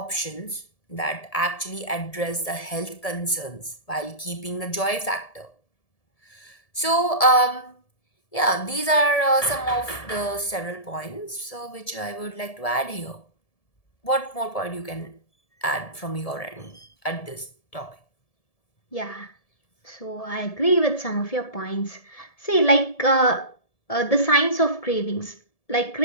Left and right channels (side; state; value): right; late; 1.7 ms